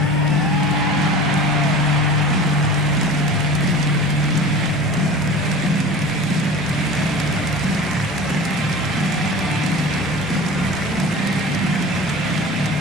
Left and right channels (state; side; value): noise; left; hum, 27 dB below the sound